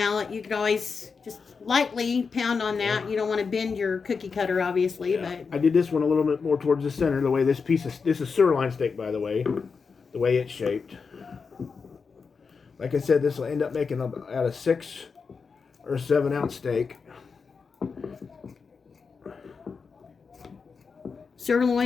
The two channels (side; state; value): right; quieter; 5.2 dB